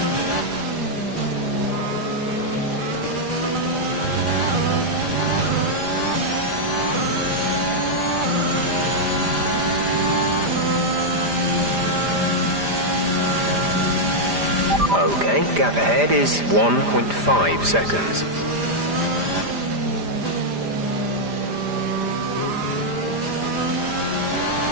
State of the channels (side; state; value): left; late; 5.0 ms